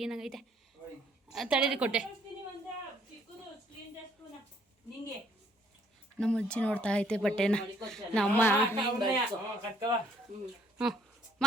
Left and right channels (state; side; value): normal; both; correlation 0.65